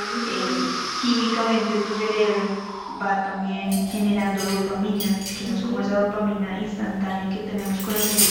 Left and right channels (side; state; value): both; identical; correlation 1.00